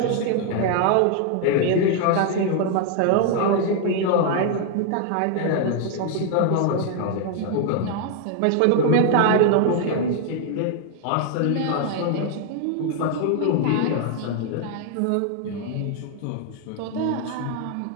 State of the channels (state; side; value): different; both; correlation 0.00